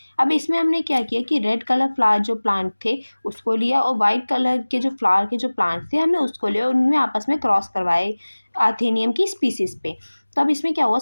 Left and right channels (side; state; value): both; inverted; correlation -1.00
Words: अब इसमें हमने क्या किया कि रेड कलर फ्लावर जो प्लांट थे उसको लिया और वाइट कलर के जो फ्लावर के जो प्लांट्स थे हमने उसको लिया और उनमें आपस में क्रॉस करवाए आर्थेनियम की स्पीसीज पे। तो अब इसमें क्या हुआ,